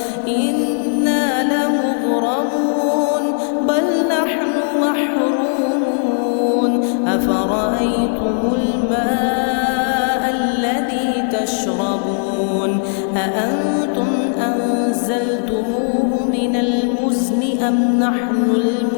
إنا لمغرمون بل نحن محرومون أفرأيتم الماء الذي تشربون أأنتم أنزلتموه من المزن أم نحن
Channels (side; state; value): right; silent; digital silence